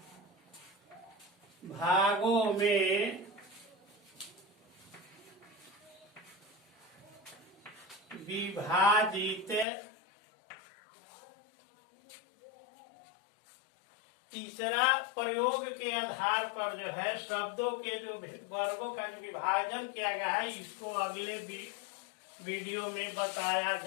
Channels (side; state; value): right; drops out; at 9.7 s